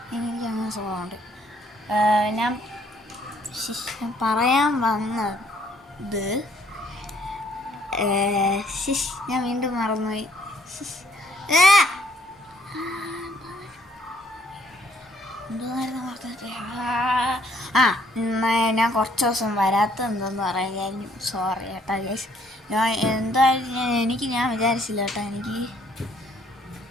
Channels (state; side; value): normal; both; correlation 0.65